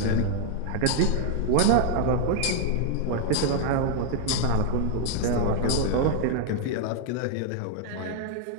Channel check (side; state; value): both; different; correlation 0.00